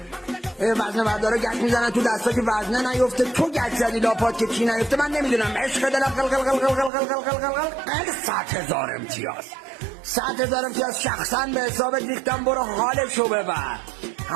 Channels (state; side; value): drops out; left; at 6.9 s